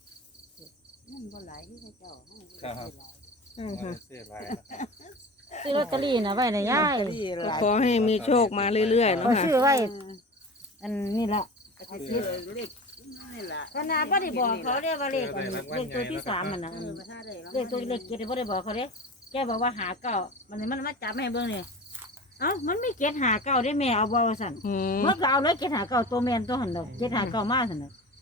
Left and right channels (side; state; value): both; normal; correlation 0.33